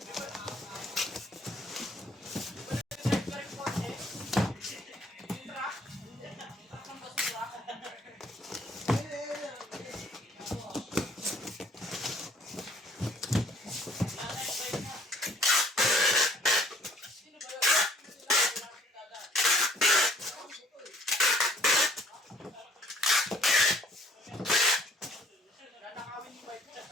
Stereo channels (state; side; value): normal; both; correlation 0.60